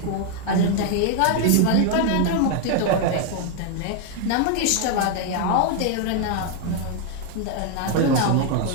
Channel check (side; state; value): both; different; correlation 0.01